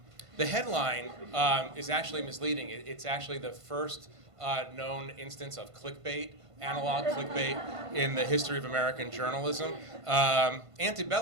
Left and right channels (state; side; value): late; left; 1.5 ms